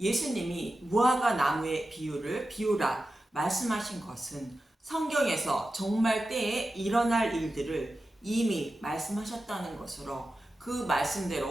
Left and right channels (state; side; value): normal; both; correlation 0.92